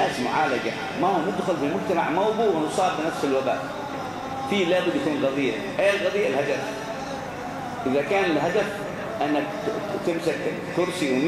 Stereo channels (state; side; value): identical; both; correlation 1.00